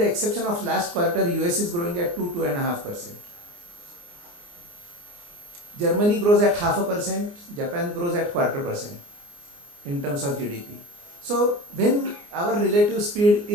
exception of last quarter, US is growing at 2-2.5%. Germany grows at 0.5%, Japan grows at 0.25% in terms of GDP. So when our relative speed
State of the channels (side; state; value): left; late; 29 ms